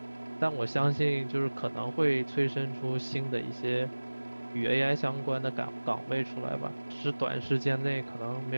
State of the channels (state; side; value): inverted; both; correlation -1.00